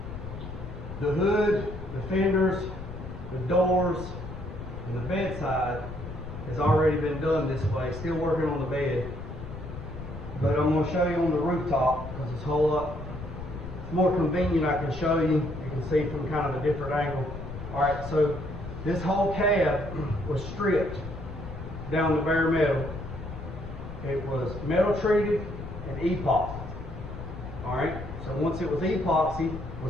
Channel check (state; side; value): noise; left; rumble, 10 dB below the sound